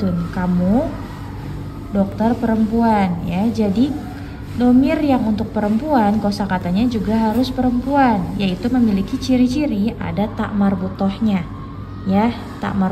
kamu dokter perempuan ya. Jadi domir yang untuk perempuan kosakatanya juga harus perempuan, yaitu memiliki ciri-ciri ada tak marbutohnya ya. Tak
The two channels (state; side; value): identical; both; correlation 1.00